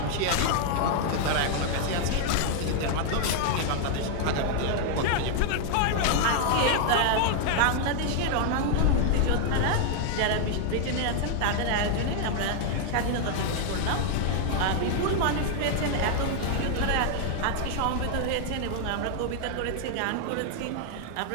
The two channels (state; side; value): different; both; correlation 0.00